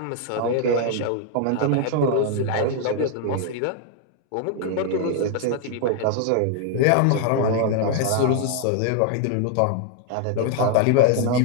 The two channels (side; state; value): both; different; correlation 0.00